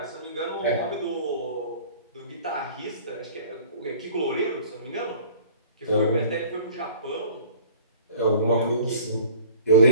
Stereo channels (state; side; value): inverted; both; correlation -0.48